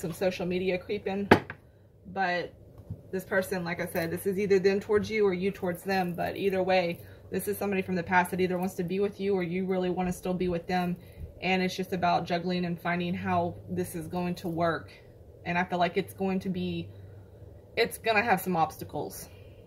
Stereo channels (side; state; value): both; identical; correlation 1.00